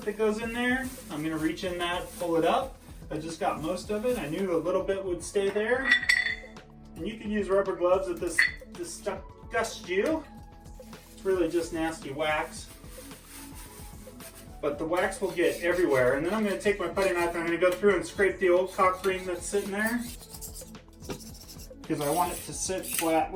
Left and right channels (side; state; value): both; identical; correlation 1.00